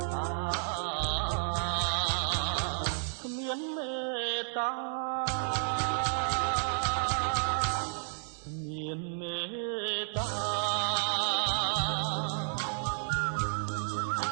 គ្មានមេត្តាគ្មានមេត្តា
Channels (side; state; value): left; silent; digital silence